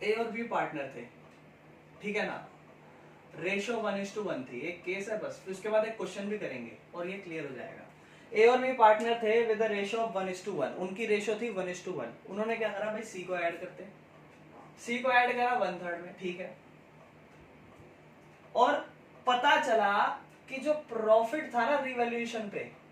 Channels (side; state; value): both; identical; correlation 1.00